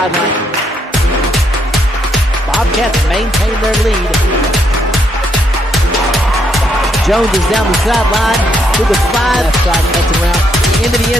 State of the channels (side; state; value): both; normal; correlation 0.75